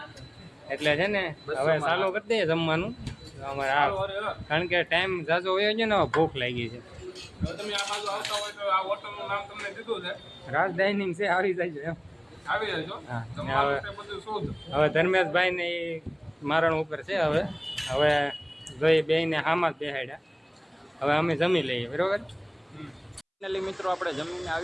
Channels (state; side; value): identical; both; correlation 1.00